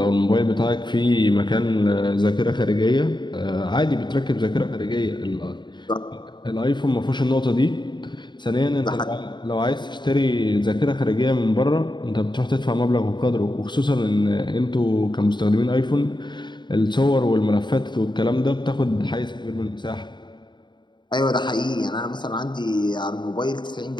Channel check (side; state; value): right; late; 0.22 ms